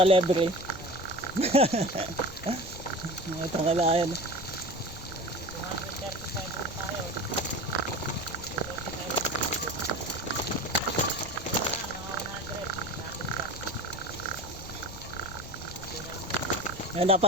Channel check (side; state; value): left; noise; rumble, 14 dB below the sound